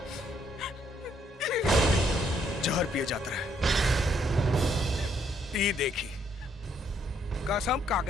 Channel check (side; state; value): both; normal; correlation 0.70